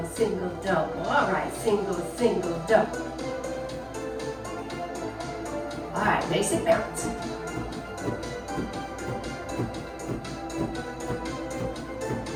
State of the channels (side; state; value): both; identical; correlation 1.00